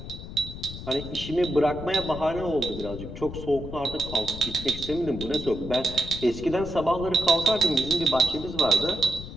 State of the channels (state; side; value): noise; left; rumble, 10 dB below the sound